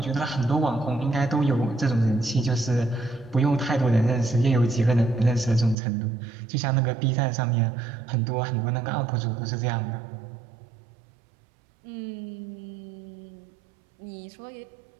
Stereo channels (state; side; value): drops out; left; at 5.8 s